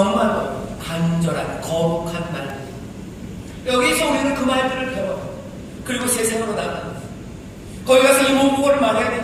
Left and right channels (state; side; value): identical; both; correlation 1.00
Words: 간절한 거룩한 말들. 여기서 우리는 그 말들을 배워요. 그리고 세상으로 나갑니다. 거기 가서 이 모국어를 말해야